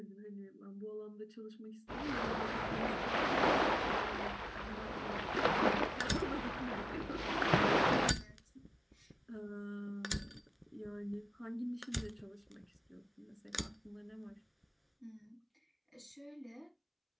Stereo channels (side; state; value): both; identical; correlation 1.00